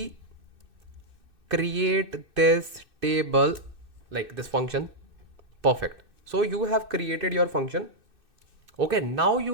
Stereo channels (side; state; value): left; late; 2.6 ms